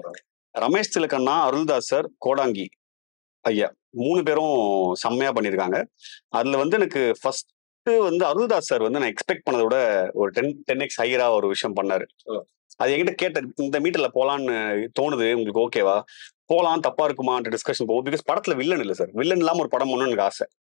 ரமேஷ் திலகண்ணா, அருள்தாஸ் சார், கோடாங்கி ஐயா 3 பேரும் செம்மையா பண்ணியிருக்காங்க. அதுல வந்து எனக்கு ஃபர்ஸ்ட் வந்து அருள்தாஸ் சார் வந்து நான் எக்ஸ்பெக்ட் பண்ணதை விட ஒரு 10x ஹையரா ஒரு விஷயம் பண்ணாரு. அது என்கிட்ட கேட்ட, இந்த மீட்டர்ல போலான்னு தோணுது, உங்களுக்கு ஓகேவா, போலாம், தப்பா இருக்குமான்ற டிஸ்கஷன் போகும். பிகாஸ் படத்துல வில்லன் இல்ல சார், வில்லன் இல்லாம ஒரு படம் பண்ணணும்னு எனக்கு ஆசை.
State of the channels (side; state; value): right; silent; digital silence